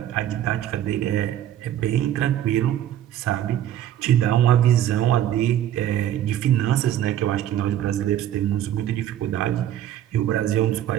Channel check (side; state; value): left; quieter; 11.5 dB